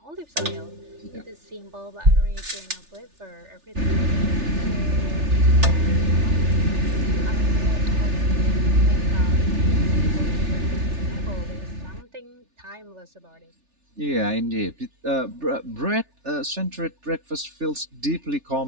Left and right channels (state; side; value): late; left; 3.4 ms